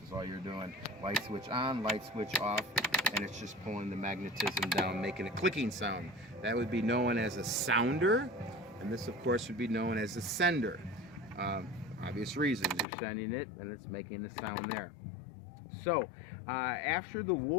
is all you're doing. Light switch on, light switch off, and it's just pulling the magnetism down, making a clicking sound. That would be known as a sounder, and this, of course, would be known as a sender. Obvious reasons. You're sending it, and it's making the sound there. So, after the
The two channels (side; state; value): right; drops out; at 12.9 s